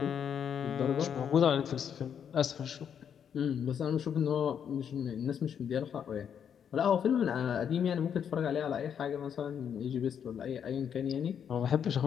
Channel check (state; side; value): quieter; right; 8.2 dB